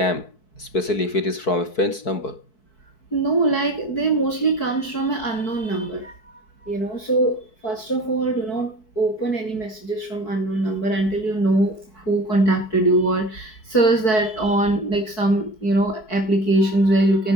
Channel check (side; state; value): right; late; 4.6 ms